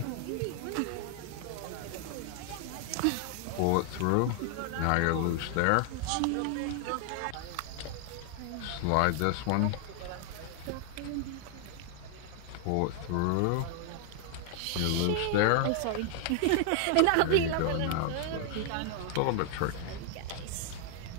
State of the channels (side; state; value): both; different; correlation 0.00